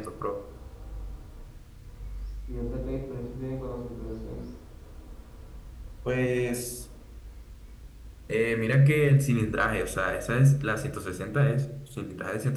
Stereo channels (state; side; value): identical; both; correlation 1.00